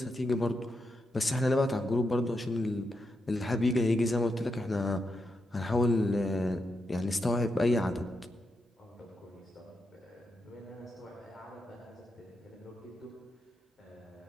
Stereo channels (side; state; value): both; normal; correlation 0.85